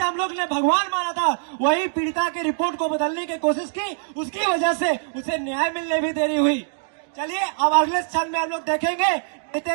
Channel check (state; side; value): silent; left; 60 dB below the other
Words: हम लोग ने भगवान माना था, वही पीड़िता की रिपोर्ट को बदलने की कोशिश की, उसकी वजह से उसे न्याय मिलने भी देरी हुई। चलिए अब अगले क्षण में हम लोग देखेंगे